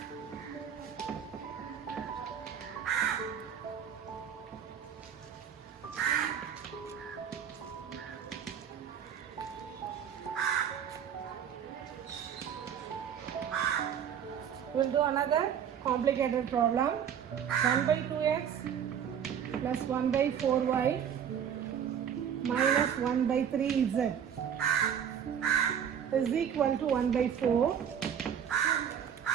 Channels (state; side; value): quieter; left; 8.4 dB